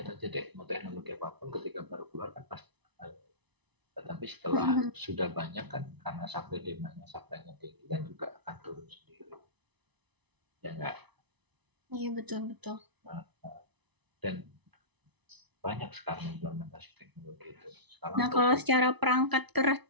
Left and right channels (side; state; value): left; late; 1.0 ms